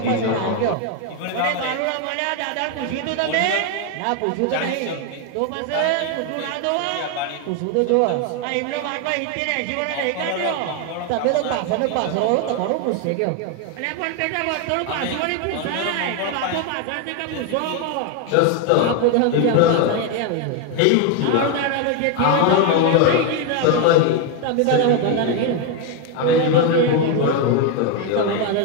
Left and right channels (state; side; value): different; both; correlation 0.01